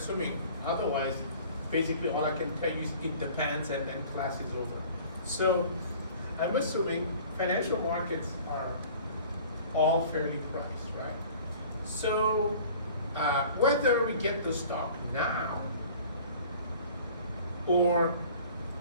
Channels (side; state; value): both; inverted; correlation -0.47